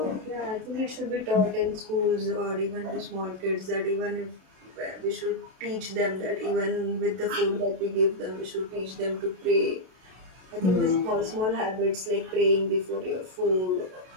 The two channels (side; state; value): left; late; 32 ms